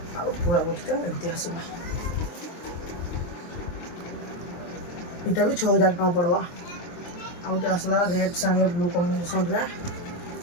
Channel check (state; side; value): late; right; 23 ms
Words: पूरा बॉडीटा एमती आसवा। इटा भी 6000 टका पड़वा। आउटे आसला रेड संगे ब्लू कॉम्बिनेशन रे